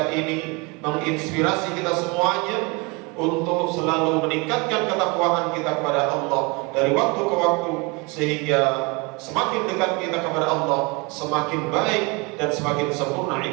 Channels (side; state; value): left; quieter; 28.4 dB